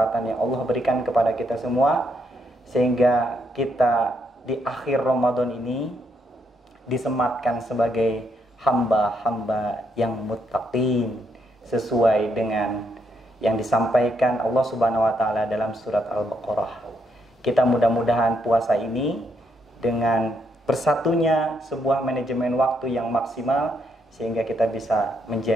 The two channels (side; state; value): both; normal; correlation 0.76